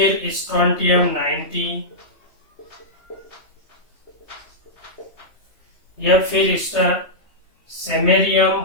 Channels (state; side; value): late; right; 3.2 ms